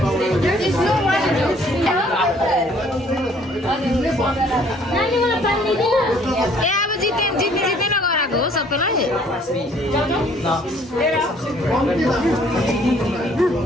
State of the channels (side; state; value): both; normal; correlation 0.59